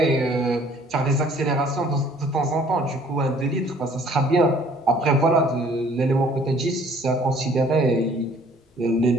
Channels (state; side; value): normal; both; correlation 0.57